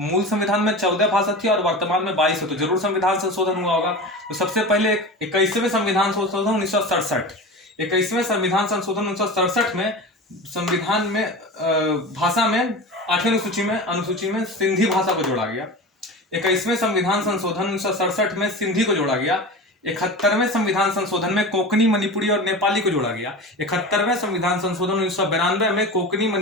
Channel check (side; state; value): both; normal; correlation 0.30